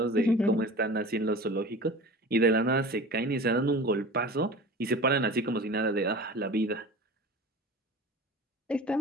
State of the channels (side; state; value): both; normal; correlation 0.36